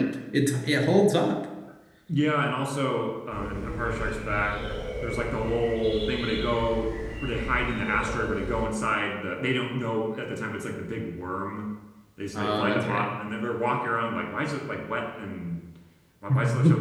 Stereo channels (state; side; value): identical; both; correlation 1.00